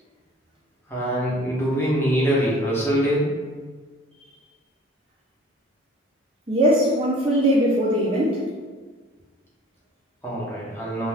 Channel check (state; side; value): normal; both; correlation 0.49